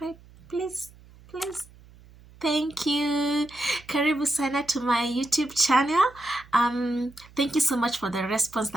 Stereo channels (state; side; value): noise; right; hum, 24 dB below the sound